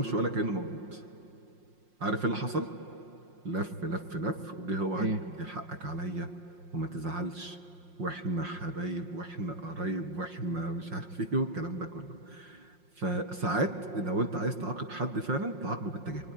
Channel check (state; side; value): late; left; 5.6 ms